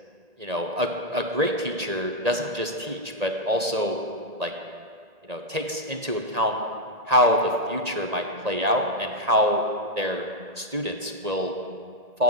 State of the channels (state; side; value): late; left; 1.8 ms